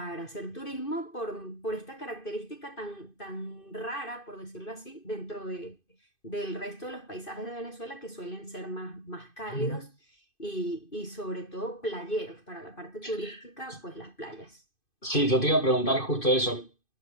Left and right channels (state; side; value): late; right; 2.5 ms